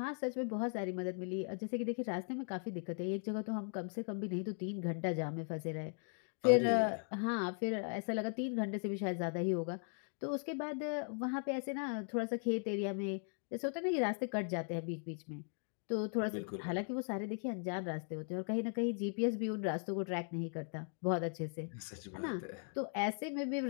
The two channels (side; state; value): right; silent; 52 dB below the other